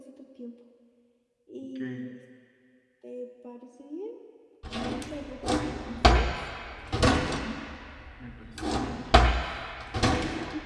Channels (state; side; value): identical; both; correlation 1.00